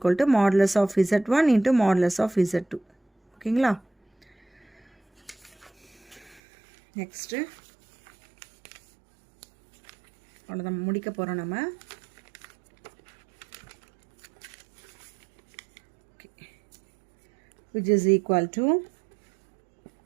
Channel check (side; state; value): left; drops out; at 6.4 s